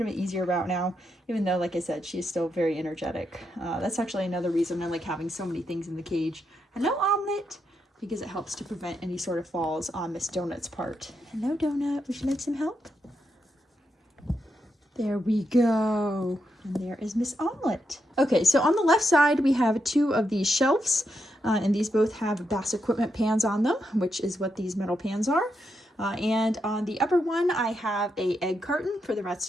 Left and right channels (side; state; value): both; normal; correlation 0.83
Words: of an easier route now, even though, like I said, she's still very energetic. That's actually another reason I like having so many things in the cage. Hello, Omelet, because it helps to prevent any sort of falls on Miss Donut's part. Hello, Donut. Would you like some help? There we go. And there is Miss Omelet. Okay, so on the left side, we have two of these shelves, and these both have Bass Equipment pans on them, which is what these metal pans are. And on the upper one, I have a egg carton for the rats